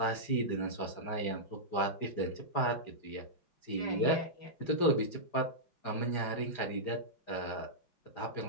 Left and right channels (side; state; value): right; late; 5.0 ms